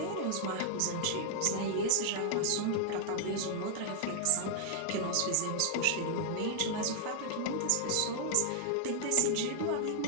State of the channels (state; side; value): different; both; correlation 0.00